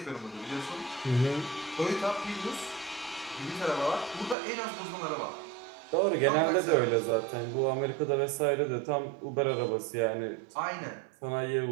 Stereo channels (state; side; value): drops out; left; at 4.4 s